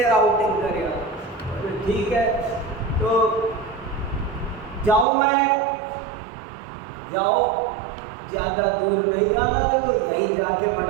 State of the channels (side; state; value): left; drops out; at 5.1 s